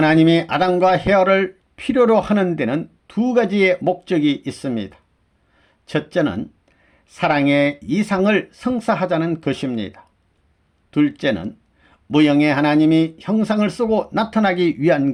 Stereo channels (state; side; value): identical; both; correlation 1.00